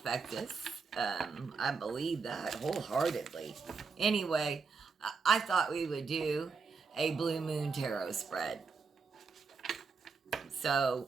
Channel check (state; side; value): quieter; left; 5.0 dB